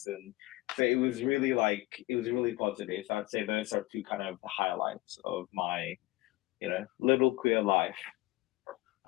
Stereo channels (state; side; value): quieter; right; 19.8 dB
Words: And so it was really positive. So I'd say those are two kind of the highlights of my, little queer life.